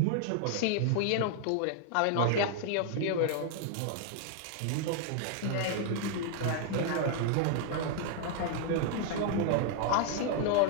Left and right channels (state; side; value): different; both; correlation 0.00